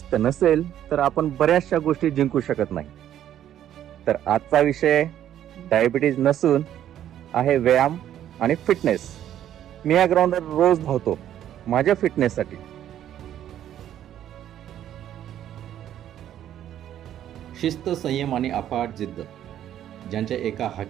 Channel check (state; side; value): quieter; left; 11.1 dB